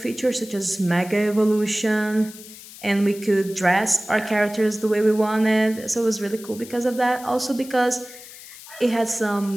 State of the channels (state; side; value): noise; left; hiss, 17 dB below the sound